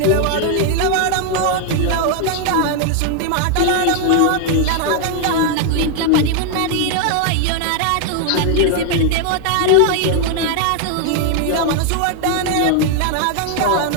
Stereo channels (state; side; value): different; both; correlation 0.00